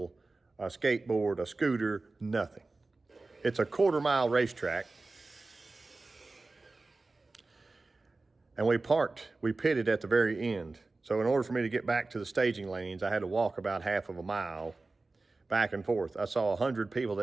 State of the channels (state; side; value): quieter; left; 3.4 dB